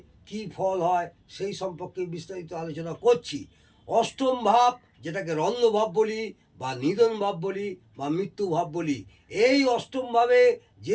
কি ফল হয় সেই সম্পর্কে বিস্তারিত আলোচনা করছি। অষ্টম ভাব, যেটাকে রন্ধ্র ভাব বলি বা নিধন ভাব বলি বা মৃত্যু ভাব বলি, এই অষ্টম ভাবে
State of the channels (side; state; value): both; identical; correlation 1.00